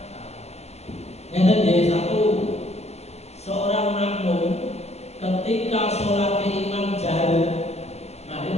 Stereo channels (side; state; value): right; late; 0.31 ms